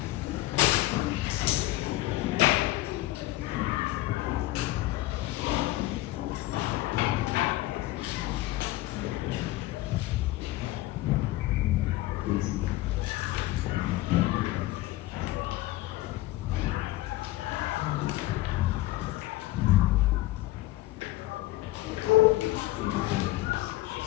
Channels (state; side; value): quieter; right; 17.2 dB